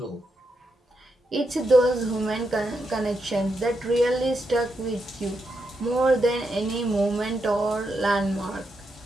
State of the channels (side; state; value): both; normal; correlation 0.83